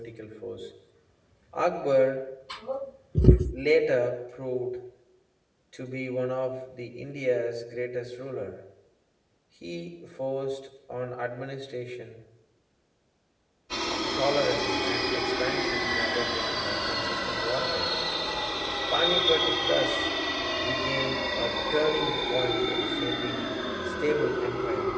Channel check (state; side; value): identical; both; correlation 1.00